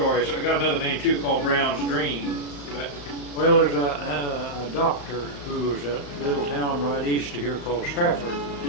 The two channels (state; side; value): late; right; 35 ms